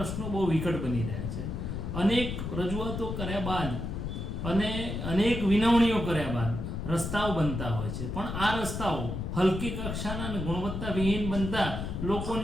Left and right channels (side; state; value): left; noise; rumble, 4 dB below the sound